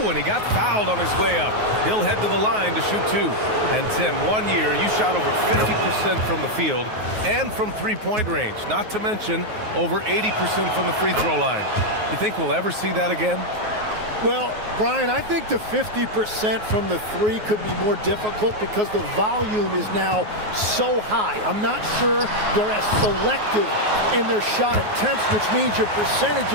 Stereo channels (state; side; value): late; left; 9.4 ms